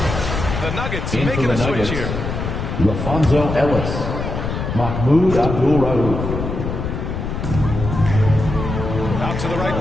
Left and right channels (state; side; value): noise; left; rumble, 4 dB below the sound